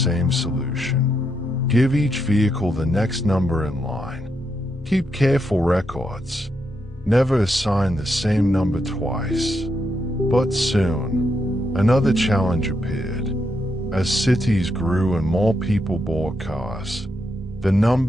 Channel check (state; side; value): normal; both; correlation 0.81